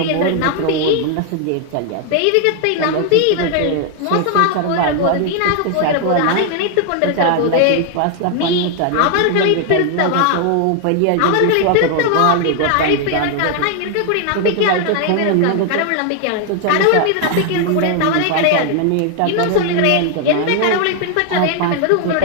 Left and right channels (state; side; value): different; both; correlation 0.00